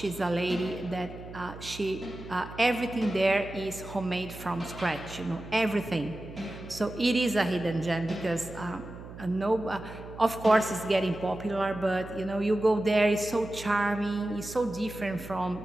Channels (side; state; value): right; noise; hum, 14 dB below the sound